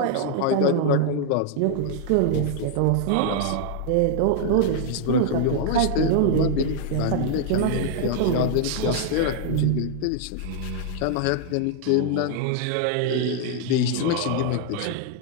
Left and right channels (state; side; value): different; both; correlation 0.00